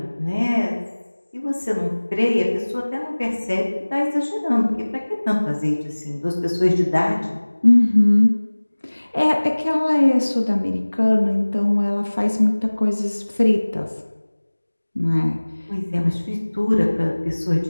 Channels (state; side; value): inverted; both; correlation -1.00